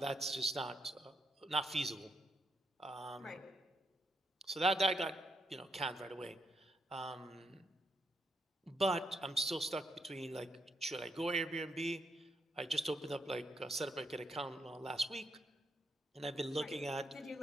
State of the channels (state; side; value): normal; both; correlation 0.79